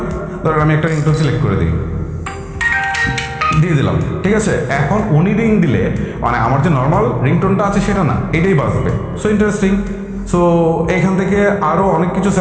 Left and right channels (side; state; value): both; identical; correlation 1.00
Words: ধরেন আমি একটা রিংটোন সিলেক্ট করে দিই, দিয়ে দিলাম। ঠিক আছে, এখন উনি রিং দিলে মানে আমার যে নর্মাল রিংটোনটা আছে সেটা না, এটাই বাজবে। So interesting. সো এখান থেকে আরও অনেক কিছু